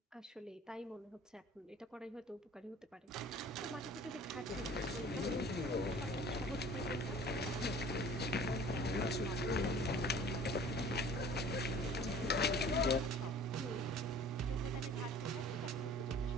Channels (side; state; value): both; normal; correlation 0.47